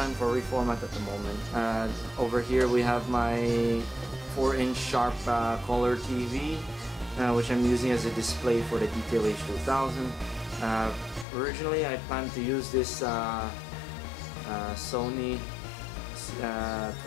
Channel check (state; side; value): drops out; right; at 11.2 s